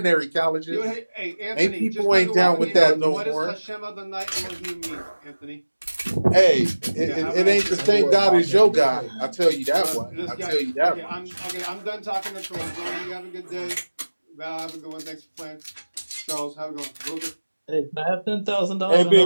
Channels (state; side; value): inverted; both; correlation -1.00